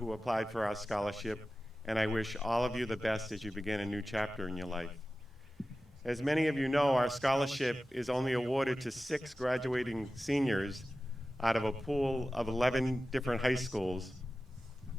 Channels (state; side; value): normal; both; correlation 0.95